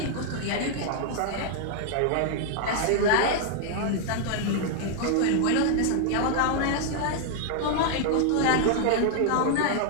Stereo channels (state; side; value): different; both; correlation 0.00